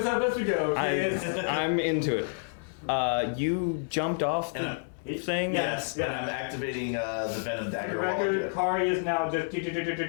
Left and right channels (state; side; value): silent; right; digital silence